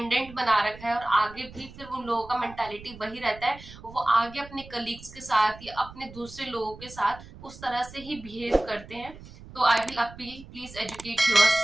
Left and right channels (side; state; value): right; noise; rumble, 17 dB below the sound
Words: बना रखा है, और आगे भी फिर उन लोगों का मेंटालिटी वही रहता है, वो आगे अपने कलीग्स के साथ या अपने दूसरे लोगों के साथ उस तरह से ही बिहेव करते हैं। तो I will appeal, please educate your